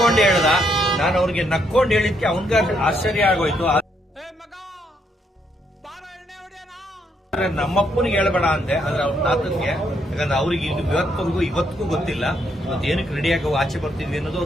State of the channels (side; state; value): both; normal; correlation 0.74